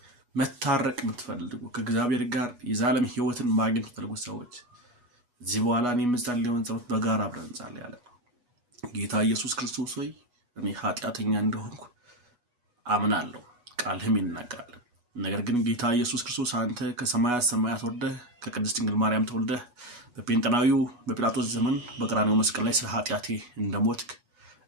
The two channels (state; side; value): late; left; 8.2 ms